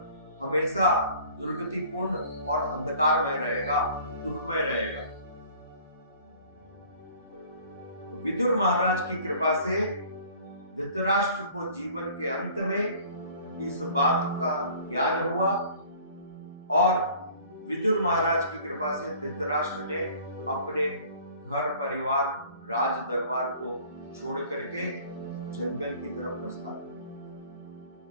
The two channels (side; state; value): both; inverted; correlation -0.50